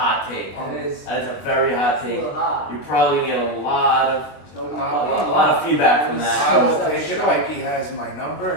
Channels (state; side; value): late; right; 20 ms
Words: take. That is That is a very hot a take. little hot. You're probably gonna get a lot of So, a lot of feedback from that. I will take it. Ike has my number